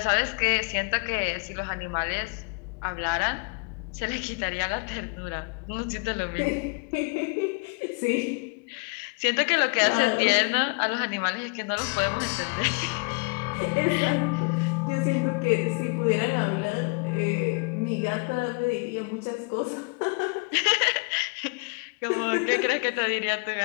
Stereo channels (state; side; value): quieter; right; 33.3 dB